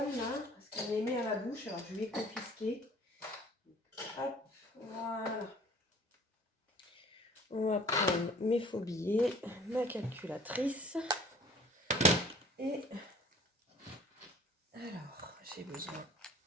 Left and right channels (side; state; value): both; normal; correlation 0.50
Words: là, parce qu'elle les met à la bouche, alors je vais les confisquer. Hop, voilà. On va prendre mes faux billets, ma calculatrice. Et alors, j'ai besoin